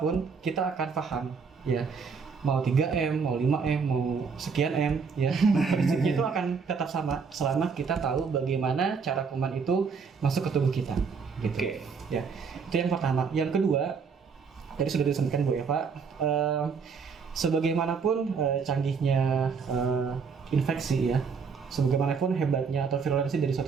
kita akan paham, ya. Mau 3M, mau 5M, mau sekian M, ya. Prinsipnya itu akan tetap sama selama kita tahu bagaimana cara kuman itu masuk ke tubuh kita, gitu. Oke. Ya, itu yang pertama. Yang kedua, tadi sudah disampaikan Bu Eva, sebagaimanapun canggihnya infeksi ya, sebagaimanapun hebatnya atau virulensi dari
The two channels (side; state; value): left; quieter; 5.6 dB